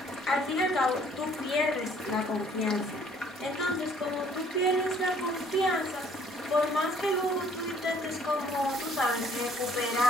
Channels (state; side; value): normal; both; correlation 0.60